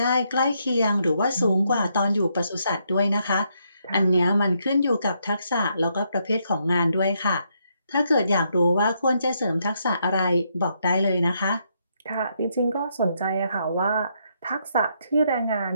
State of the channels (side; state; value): both; inverted; correlation -0.76